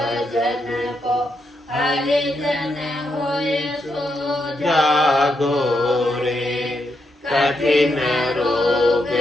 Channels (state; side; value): normal; both; correlation 0.81